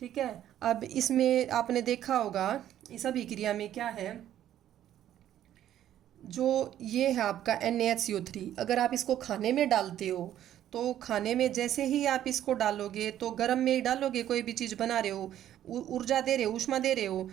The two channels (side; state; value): left; quieter; 11.6 dB